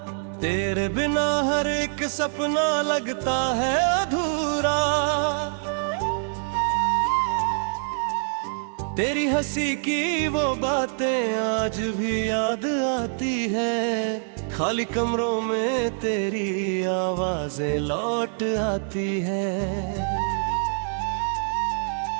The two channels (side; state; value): left; silent; 62 dB below the other